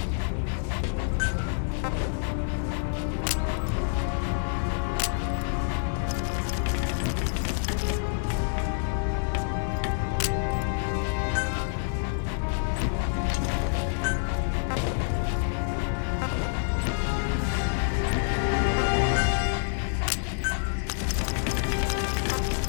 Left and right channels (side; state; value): right; silent; 60 dB below the other